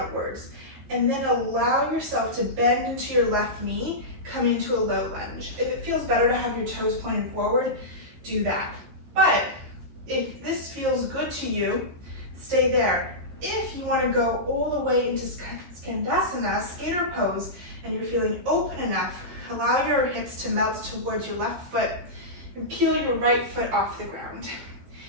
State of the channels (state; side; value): late; left; 14 ms